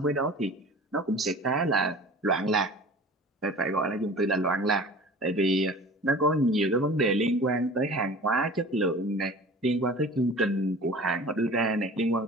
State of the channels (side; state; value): both; normal; correlation 0.41